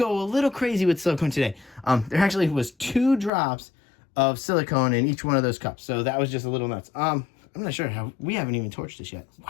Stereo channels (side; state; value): right; drops out; at 3.3 s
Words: a little crazy with silicone today. There actually was 2 drops of silicone in each one of those cups. So that was just a little nuts. I'm not sure how, we haven't even torched this yet.